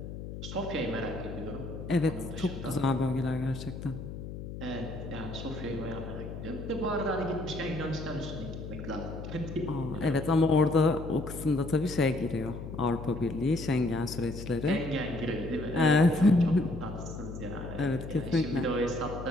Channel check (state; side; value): noise; left; hum, 9 dB below the sound